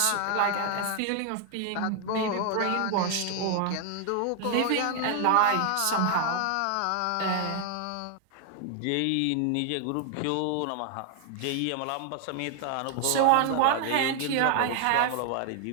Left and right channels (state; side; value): different; both; correlation 0.00